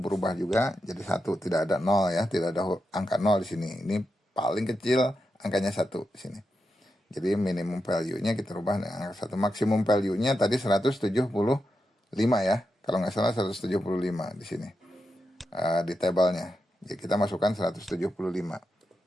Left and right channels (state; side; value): normal; both; correlation 0.87